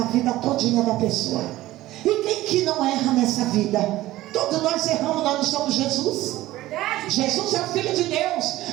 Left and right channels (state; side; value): quieter; left; 16.3 dB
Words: vida todinha da pessoa. E quem que não erra nessa vida? Todos nós erramos, nós não somos Jesus. Jesus é o Filho de